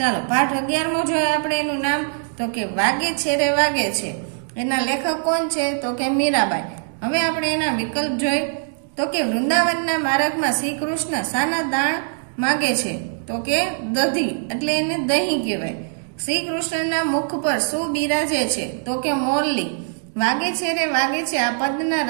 પાઠ 11મો જોઈએ આપણે. એનું નામ તો કે વાગે છે રે વાગે છે. એના લેખક કોણ છે? તો કે મીરાબાઈ. હવે આપણે એના વિકલ્પ જોઈ તો કે વૃંદાવનના માર્ગમાં શ્રી કૃષ્ણ શાના દાણ માગે છે? તો કે દધી, એટલે એને દહીં કહેવાય. શ્રી કૃષ્ણના મુખ પર શું બિરાજે છે? તો કે મોરલી. વાગે છે રે વાગે છે આ પદના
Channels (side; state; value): left; silent; digital silence